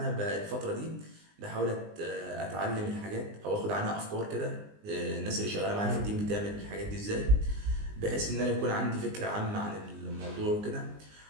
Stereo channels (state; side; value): late; left; 19 ms